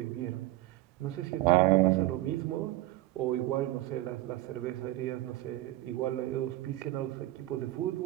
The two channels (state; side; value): quieter; left; 16.6 dB